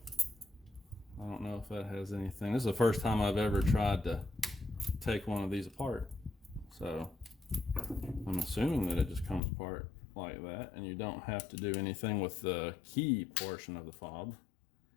I don't know if that has anything. This is the first time I've ever tried to take one of these apart, so I'm assuming that it just comes apart like that, and you don't have to do anything with the key portion of the fob,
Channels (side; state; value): right; drops out; at 9.4 s